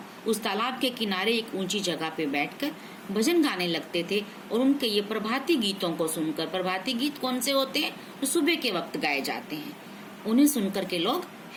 उस तालाब के किनारे एक ऊंची जगह पे बैठकर भजन गाने लगते थे। और उनके ये प्रभाती गीतों को सुनकर, प्रभाती गीत कौन से होते हैं, तो सुबह के वक्त गाए जाते हैं, उन्हें सुनकर के लोग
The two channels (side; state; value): both; identical; correlation 1.00